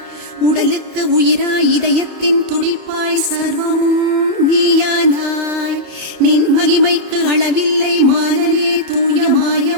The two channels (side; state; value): left; late; 31 ms